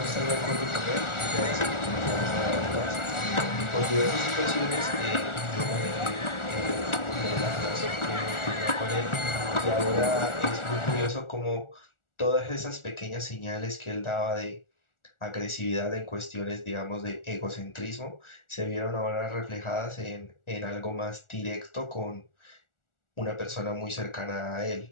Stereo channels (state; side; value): late; right; 1.4 ms